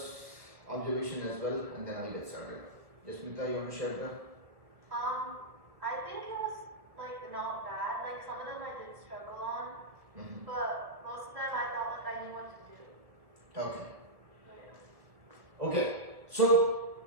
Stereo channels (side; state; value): left; late; 1.6 ms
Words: observation as well, and then I'll get started. Yasmita, you want to share that? I think it was like not bad. Like some of them I did struggle on, but most of them I felt like I knew what to do. Okay. So, yeah. Okay. So